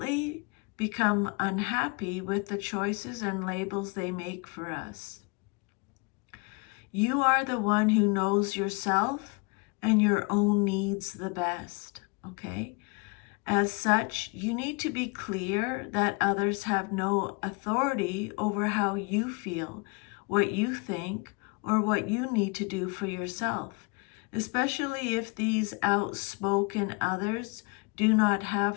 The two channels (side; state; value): right; quieter; 30.5 dB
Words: become unhappy with the choices and labels they make for us. You are the one who knows yourself and your own needs the best, okay? As such, you need to be clear that others have no authority over how you feel, what you think, or what you need to do for yourself, especially if these outspoken others do not